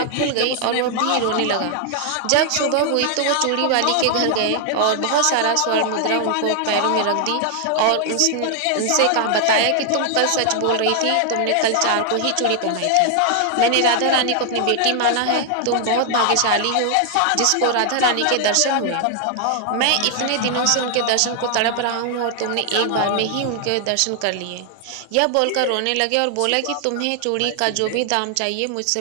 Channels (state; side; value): different; both; correlation 0.00